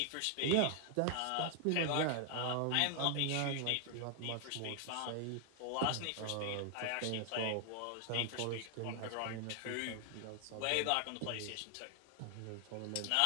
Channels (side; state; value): both; different; correlation 0.00